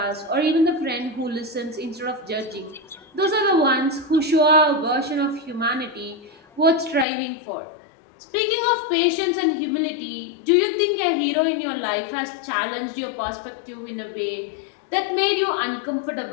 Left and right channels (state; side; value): drops out; right; at 7.1 s